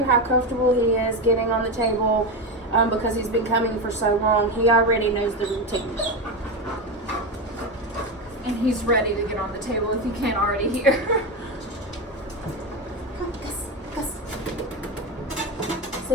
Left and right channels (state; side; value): normal; both; correlation 0.16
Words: how comfortable he is getting on the table because he's been coming for so long. He already knows the routine. And he's ready to get on the table if you can't already hear. Come, Gus.